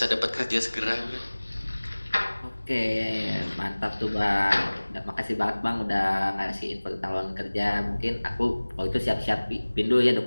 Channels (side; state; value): both; inverted; correlation -1.00